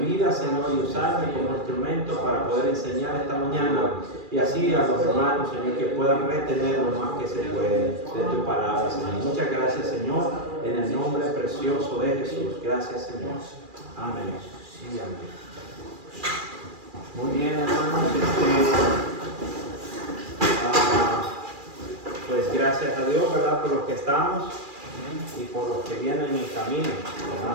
vida, Señor, y usarme como instrumento para poder enseñar esta mañana y así a los hermanos, Señor, que puedan retener lo más que se puede de tu palabra, Señor. Muchas gracias, Señor, en el nombre precioso de Jesús. Gracias, Señor. Amén. Sí, amén. Muy bien, hermanos. Pues gracias a Dios, ¿verdad? Por los que estamos y por los que vienen en camino,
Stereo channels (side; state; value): left; late; 2.4 ms